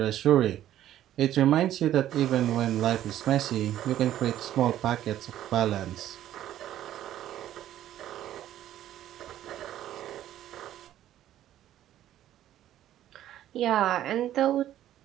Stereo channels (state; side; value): quieter; left; 12.4 dB